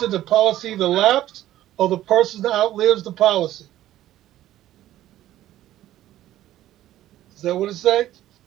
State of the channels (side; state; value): left; quieter; 13.6 dB